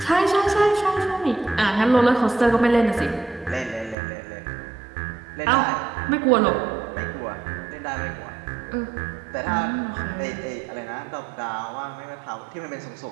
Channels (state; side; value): drops out; left; at 4.0 s